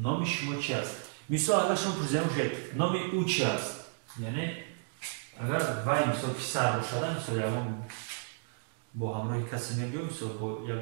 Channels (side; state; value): left; silent; digital silence